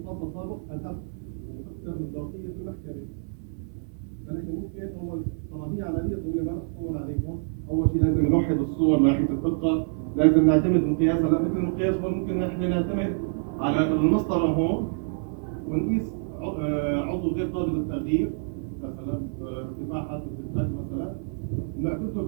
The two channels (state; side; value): silent; left; 60 dB below the other